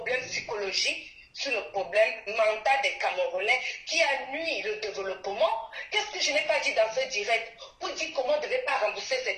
psychologique sur le problème mental des Camerounais qui a nuit le développement. Qu'est-ce que je n'ai pas dit dans ce direct pour dire comment on ne devait pas rembourser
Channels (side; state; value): both; identical; correlation 1.00